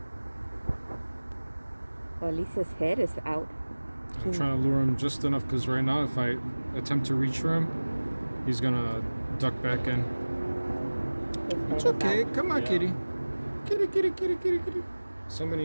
Well, at least his head is out. I'm trying to lure him just enough because right now, if I attempt to reach for him, he's gonna duck back in. It's okay. Come on, kitty. Kitty, kitty, kitty, kitty, kitty. Somebody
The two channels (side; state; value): both; inverted; correlation -1.00